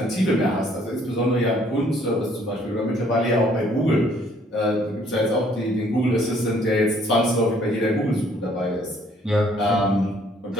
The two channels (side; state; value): both; normal; correlation 0.62